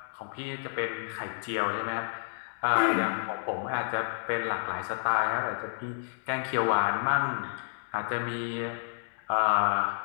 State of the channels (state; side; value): silent; right; digital silence